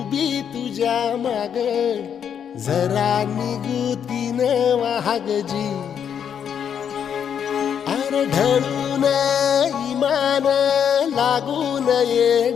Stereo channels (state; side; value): quieter; right; 8.2 dB